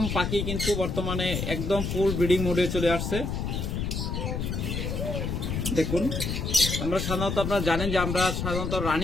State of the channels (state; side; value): noise; left; rumble, 2 dB below the sound